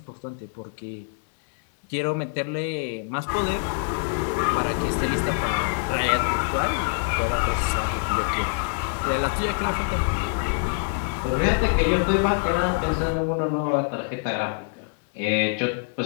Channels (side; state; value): right; silent; digital silence